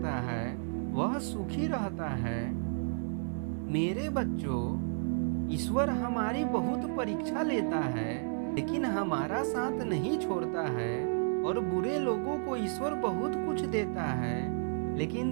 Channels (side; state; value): left; silent; digital silence